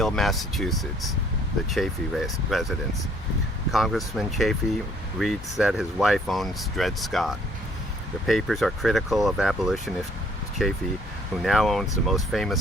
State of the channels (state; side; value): normal; both; correlation 0.62